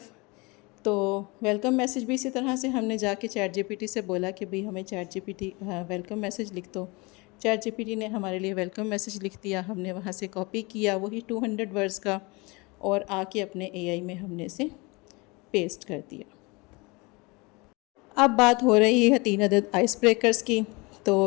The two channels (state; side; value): quieter; right; 26.3 dB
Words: तो वेलकम मैसेज भी इसी तरह से हमने जाके चैट जीपीटी से बोला कि भाई हमें चैट जीपीटी वेलकम मैसेज लिख दो। चैट जीपीटी ने हमारे लिए वेलकम मैसेज लिख दिया, हमने वहाँ से कॉपी किया वही 200 वर्ड्स का और आके अपने एआई में हमने इसे पेस्ट कर दिया। अब बात हो रही है 3 अदद आइस ब्रेकर्स की।